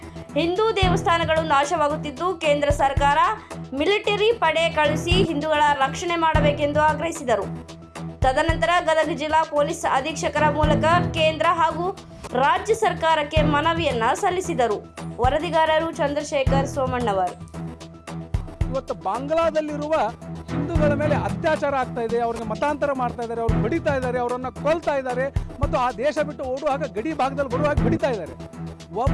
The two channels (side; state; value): both; identical; correlation 1.00